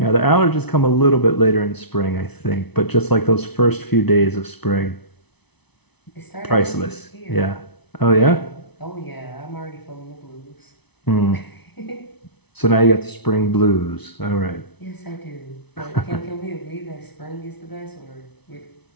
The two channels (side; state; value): right; late; 0.99 ms